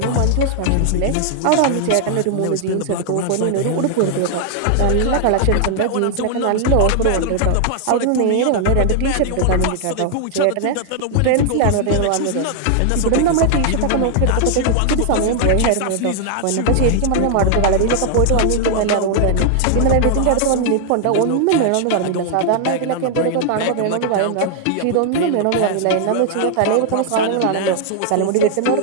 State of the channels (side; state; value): both; different; correlation 0.00